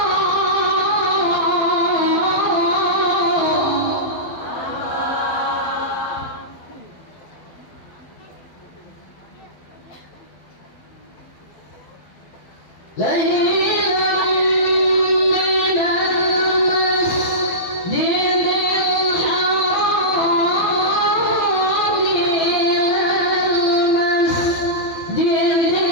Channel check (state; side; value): late; right; 12 ms